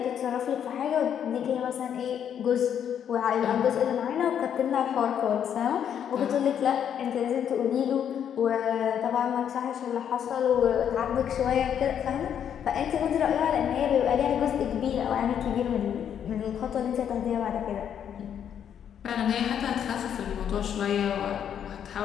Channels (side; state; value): right; quieter; 8.9 dB